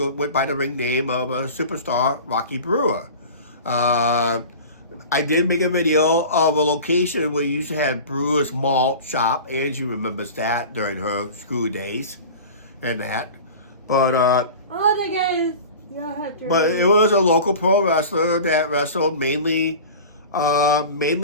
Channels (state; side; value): inverted; both; correlation -0.37